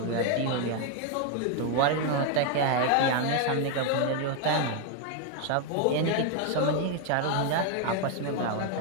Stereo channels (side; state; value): both; different; correlation 0.01